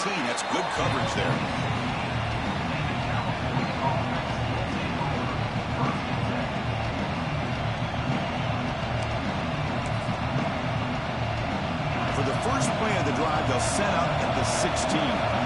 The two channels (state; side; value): identical; both; correlation 1.00